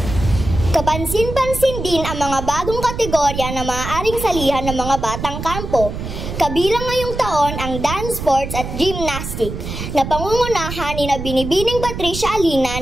Kapansin-pansin din ang mga bagong kategorya na maaaring salihan ng mga batang kampo. Kabilang ngayong taon ang dance sports at gymnastic na pangungunahan ni Binibining Patricia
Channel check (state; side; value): noise; right; rumble, 7 dB below the sound